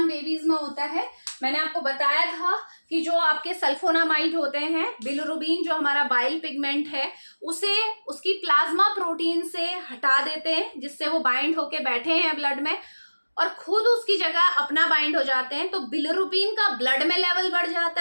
बेबीज में होता है। मैंने आपको बताया था कि जो आपके सल्फोनामाइड होते हैं, बिलिरुबिन जो हमारा बाइल पिगमेंट है, उसे उसकी प्लाज्मा प्रोटीन से हटा देते हैं, जिससे वो बाइंड होके बैठे हैं ब्लड में और खुद उसकी जगह अपना बाइंड हो जाते हैं। तो बिलिरुबिन का ब्लड में लेवल बढ़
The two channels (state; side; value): inverted; both; correlation -1.00